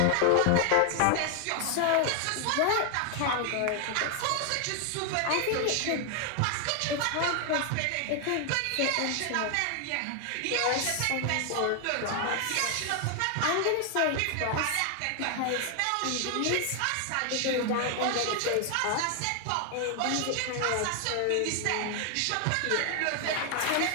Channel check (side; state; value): both; different; correlation 0.00